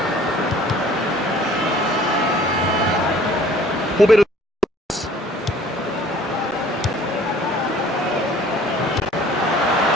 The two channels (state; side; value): normal; both; correlation 0.53